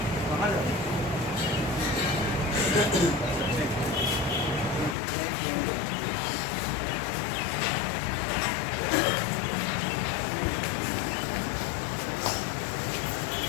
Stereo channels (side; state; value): right; drops out; at 5.0 s